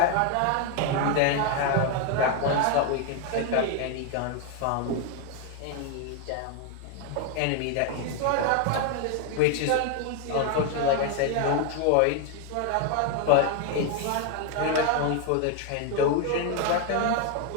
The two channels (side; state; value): both; different; correlation 0.01